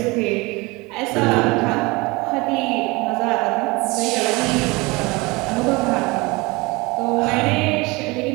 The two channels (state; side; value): quieter; left; 24.4 dB